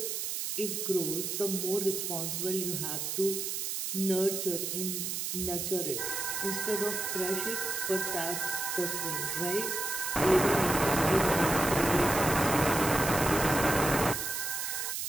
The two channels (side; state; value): right; noise; hiss, 2 dB below the sound